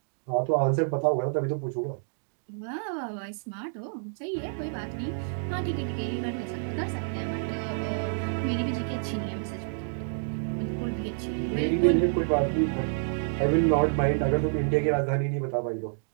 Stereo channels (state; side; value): silent; left; digital silence